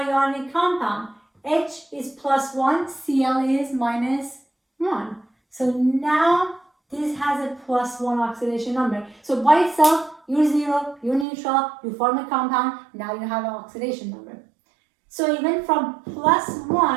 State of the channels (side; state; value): left; drops out; at 11.2 s